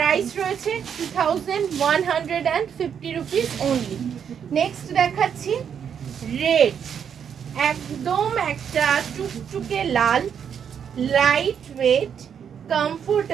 রয়েছে 2150 রুপিস অনলি। নেক্সট দেখাচ্ছি রেড, একদম একটা টুকটুকে লাল, light weight,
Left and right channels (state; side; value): quieter; left; 7.9 dB